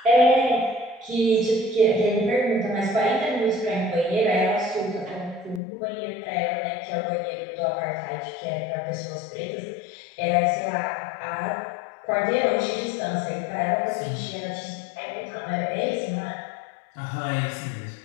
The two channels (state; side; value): drops out; right; at 5.6 s